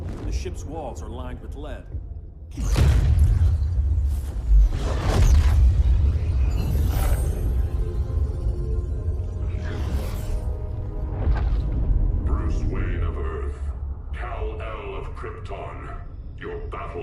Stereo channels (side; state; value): both; identical; correlation 1.00